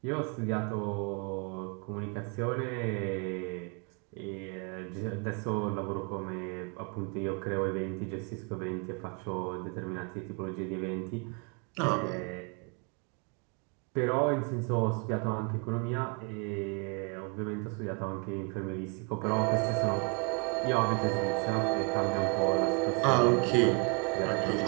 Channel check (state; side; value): quieter; left; 35.7 dB